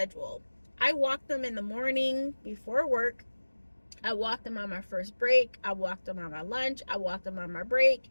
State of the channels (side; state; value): both; inverted; correlation -1.00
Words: I walk them in the morning before work. I walk them on my first break. I walk them on my lunch. I walk them on my break.